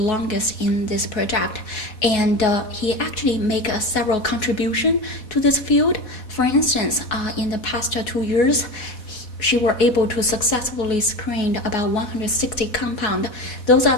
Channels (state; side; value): late; right; 4.1 ms